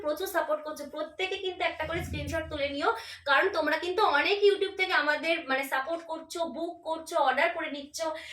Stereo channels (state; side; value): identical; both; correlation 1.00